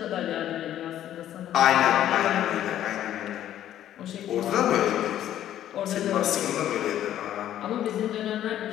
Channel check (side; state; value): right; quieter; 11.7 dB